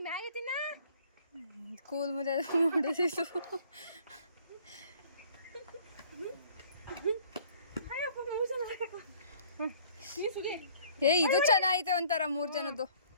ಮ್ಯಾಗಿ ತಿನ್ನ. ಕೂಲ್ ಮುದ್ದೆ ಮಾಡಿಸಿತು. ಏ ಇದು ಚೆನ್ನಾಗೈತೆ ಒಂಥರ 3 ಜನದ್ದು.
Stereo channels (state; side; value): inverted; both; correlation -0.55